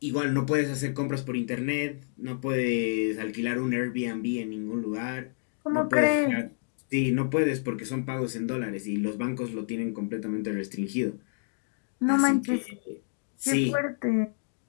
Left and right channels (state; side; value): silent; right; digital silence